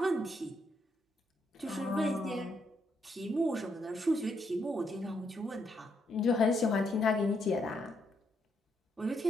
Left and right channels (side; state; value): both; normal; correlation 0.77